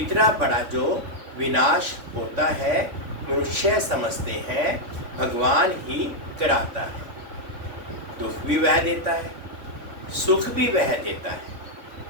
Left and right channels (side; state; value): left; late; 3.5 ms